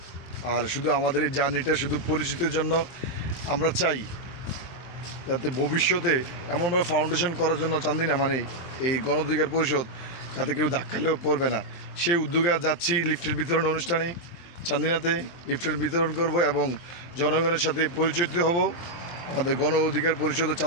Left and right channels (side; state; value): right; late; 23 ms